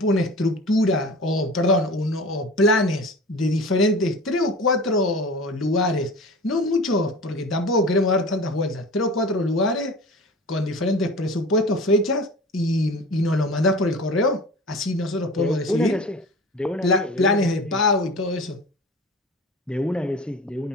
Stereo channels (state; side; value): normal; both; correlation 0.37